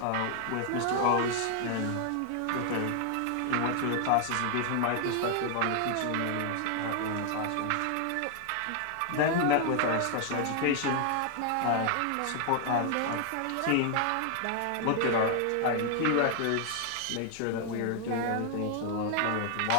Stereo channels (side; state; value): both; different; correlation 0.00